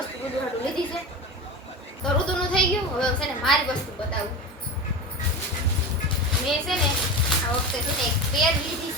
ઋતુ હાટું લીધી છે. તો ઋતુનું થઈ ગયું. હવે છે ને મારી વસ્તુ બતાવું. મેં છે ને આ વખતે છે ને એક પેર લીધી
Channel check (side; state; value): both; normal; correlation 0.26